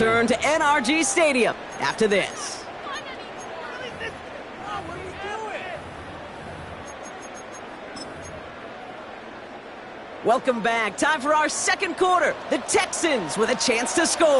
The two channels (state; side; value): identical; both; correlation 1.00